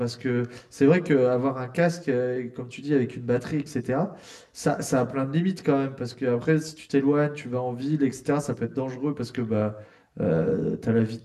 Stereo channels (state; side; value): identical; both; correlation 1.00